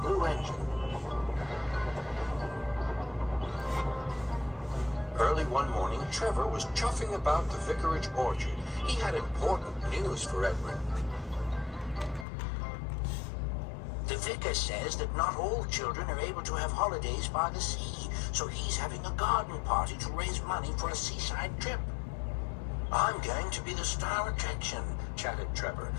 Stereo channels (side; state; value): right; drops out; at 12.2 s